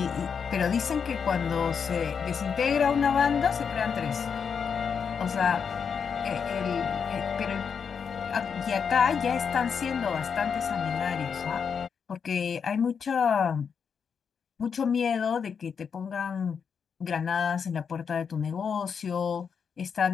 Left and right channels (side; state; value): right; quieter; 6.5 dB